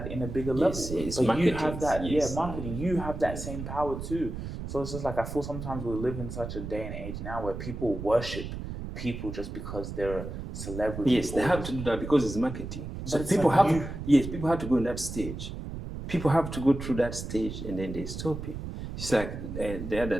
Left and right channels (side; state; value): right; noise; rumble, 7 dB below the sound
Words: in a bigger level. Yes, but marketing, you have that, yes. Marketing. You have that same power too. So it's just like, I feel sometimes we live in such a day and age now where people worship people just because they're a celebrity. Yes, they have to do that because it's marketing. So But people like people have to go in that stage. People have to go through that stage and then they stop it. It's like the other